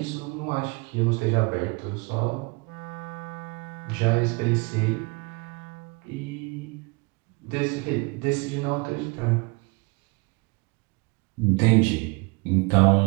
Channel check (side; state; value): left; quieter; 28.5 dB